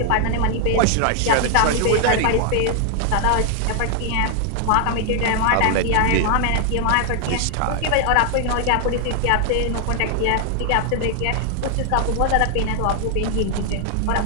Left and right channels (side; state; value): both; different; correlation 0.00